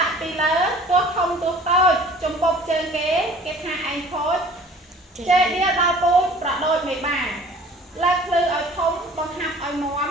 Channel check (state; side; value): normal; both; correlation 0.49